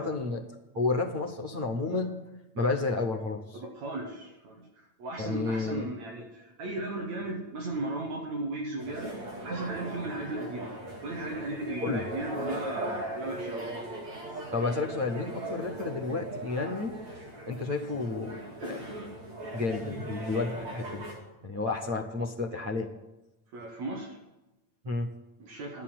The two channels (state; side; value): late; left; 9.0 ms